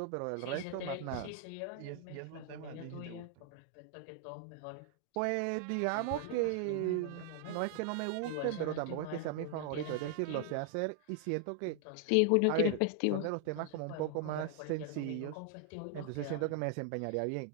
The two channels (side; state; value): both; different; correlation 0.00